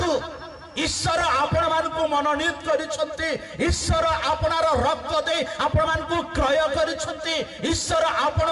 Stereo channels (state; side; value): identical; both; correlation 1.00